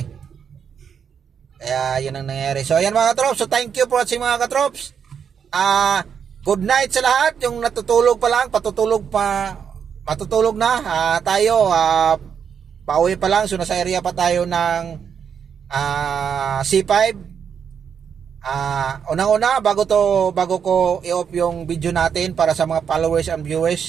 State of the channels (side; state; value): left; quieter; 7.4 dB